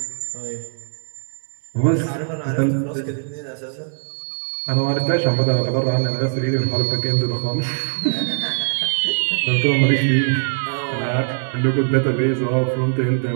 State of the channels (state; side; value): silent; left; 65 dB below the other